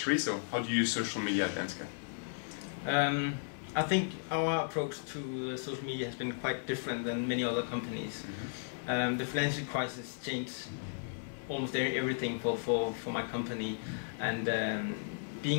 So how do you use social media at Danske? I think our approach to social media has been quite different than many other companies. Mm-hmm. The financial crisis changed almost everything for my company, and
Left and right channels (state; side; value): silent; right; 54 dB below the other